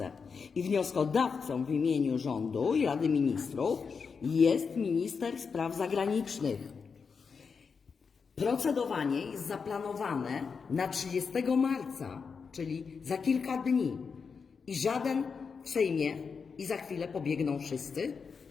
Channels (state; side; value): quieter; right; 5.6 dB